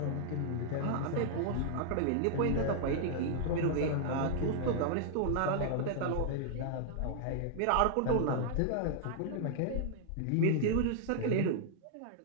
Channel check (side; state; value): both; different; correlation -0.01